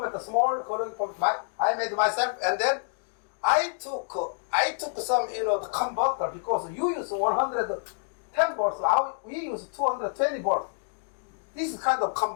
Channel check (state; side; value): silent; right; digital silence